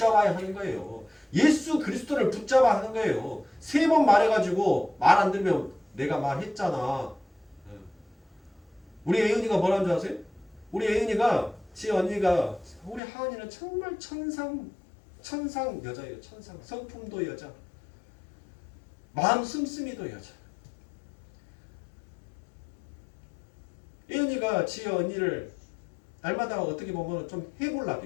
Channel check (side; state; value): right; drops out; at 13.0 s